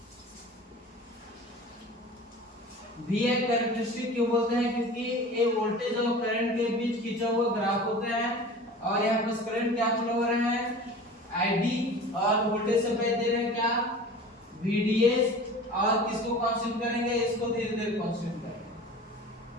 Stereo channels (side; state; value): both; normal; correlation 0.39